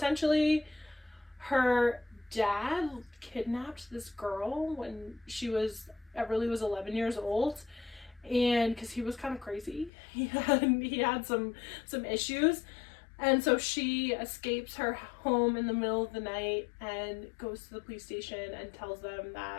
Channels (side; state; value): right; drops out; at 9.9 s